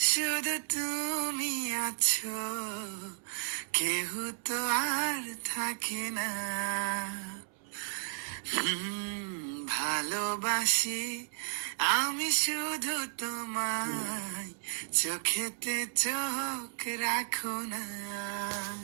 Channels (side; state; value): left; silent; 55 dB below the other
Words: শুধু তুমি আছো, কেহ তো আর থাকে না। ভালোবাসি আমি শুধু তোমায়, চোখেতে চোখ রাখো না।